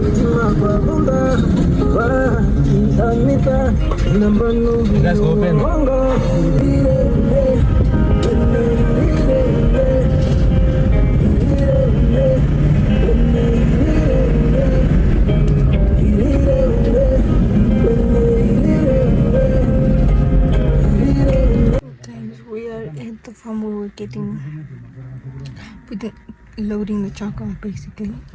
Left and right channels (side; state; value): both; identical; correlation 1.00